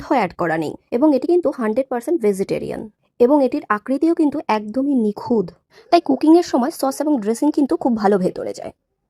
অ্যাড করা নেই, এবং এটি কিন্তু 100% ভেজিটেরিয়ান, এবং এটির আকৃতিও কিন্তু একদমই নিখুঁত। তাই কুকিংয়ের সময় সস এবং ড্রেসিং কিন্তু খুব ভালো ভেতরে যায়।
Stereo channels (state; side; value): identical; both; correlation 1.00